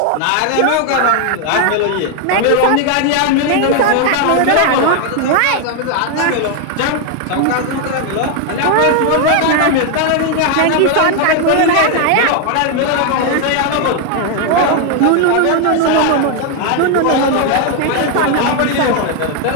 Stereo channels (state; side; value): different; both; correlation 0.01